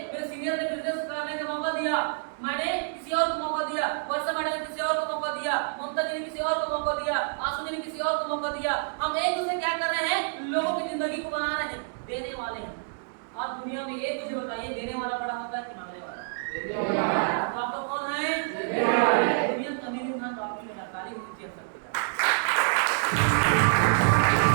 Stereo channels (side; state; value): left; silent; digital silence